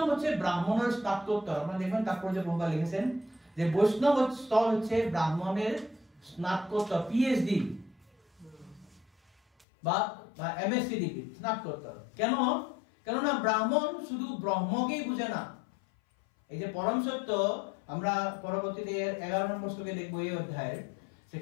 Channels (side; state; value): right; drops out; at 9.7 s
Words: হচ্ছে ব্রাহ্মণের স্নাতকোত্তর। আপনারা দেখবেন তাৎপর্য প্রভুপাদ লিখেছেন যে বৈষ্ণব স্তর হচ্ছে ব্রাহ্মণের স্নাতকোত্তর, পিএইচডি বা এমএসসি ডিগ্রি, স্নাতকোত্তর। কেন? কেননা ব্রাহ্মণ শুধু ব্রহ্মকেই বুঝে না। এই যে পরম সত্য, আমরা পরবর্তীতে 11 নম্বর শ্লোকে দেখব এই অধ্যায়ের,